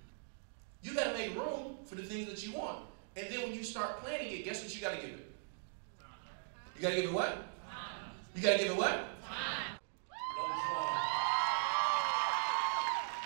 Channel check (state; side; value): silent; left; digital silence